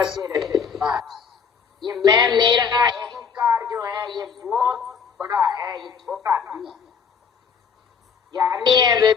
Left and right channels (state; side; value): quieter; right; 6.3 dB